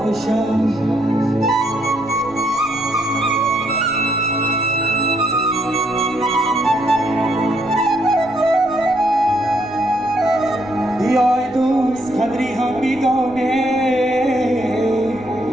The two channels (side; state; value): left; noise; rumble, 21 dB below the sound